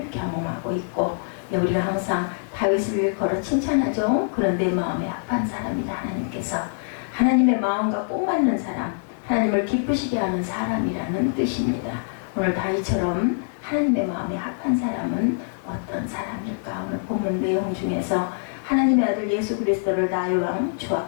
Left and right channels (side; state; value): right; silent; digital silence